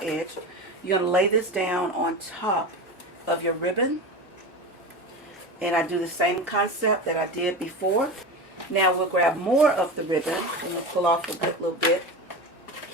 you're going to lay this down on top of your ribbon. And I do the same concept that I did before. Now we'll grab more of the ribbon and we'll pull off a little bit.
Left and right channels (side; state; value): both; normal; correlation 0.26